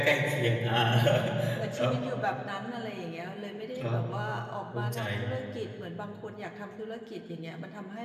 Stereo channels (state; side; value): identical; both; correlation 1.00